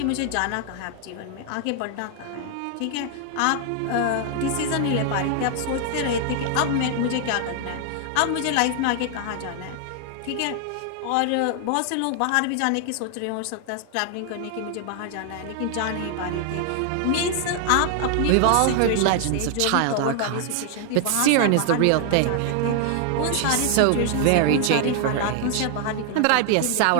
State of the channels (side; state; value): both; different; correlation 0.00